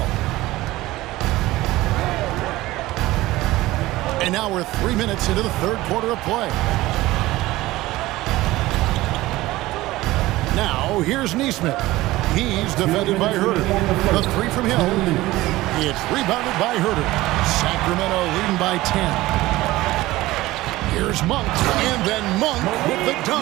And now we're 3 minutes into the third quarter of play. Now here's Neesmith. He's defended by Huerter. The 3 from Hill. It's rebounded by Huerter. Sacramento leading by 10. Here's Monk, and then Monk with the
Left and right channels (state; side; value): quieter; left; 18.0 dB